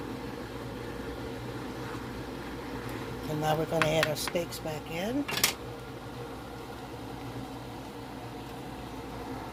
And now we're going to add our steaks back in.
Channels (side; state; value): both; identical; correlation 1.00